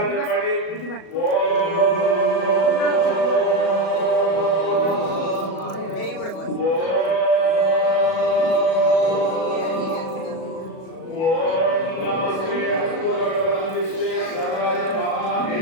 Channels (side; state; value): right; late; 37 ms